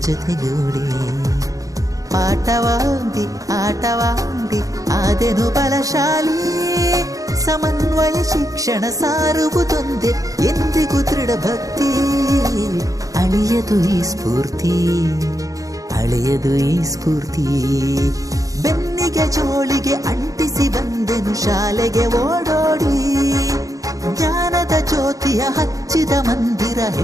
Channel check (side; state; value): left; late; 0.17 ms